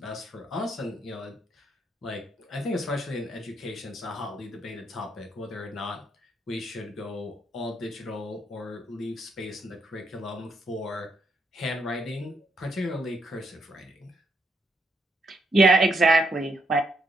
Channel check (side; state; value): both; normal; correlation 0.77